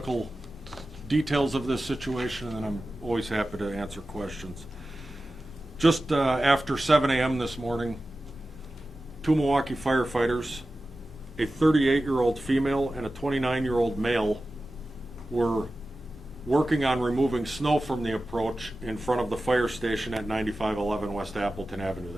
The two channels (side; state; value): both; normal; correlation 0.94